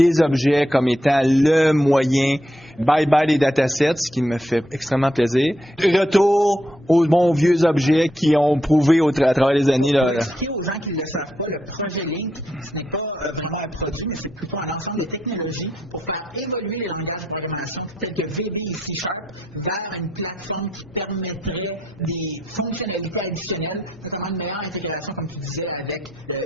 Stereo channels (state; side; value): normal; both; correlation 0.79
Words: objets comme étant le moyen. Bye-bye les datasets, ce qui me fait extrêmement plaisir. Retour aux bons vieux objets qui ont prouvé à travers les années. Pour expliquer aux gens qui ne le savent pas, le projet Link, ce n'est pas vraiment un produit, mais c'est plutôt un ensemble de technologies pour faire évoluer les langages de programmation tels que VB et C# vers une plateforme qui permettrait des fonctionnalités additionnelles, notamment une meilleure intégration, comme tu disais, avec le